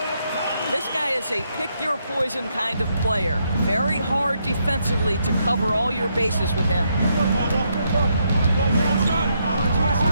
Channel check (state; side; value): inverted; both; correlation -0.77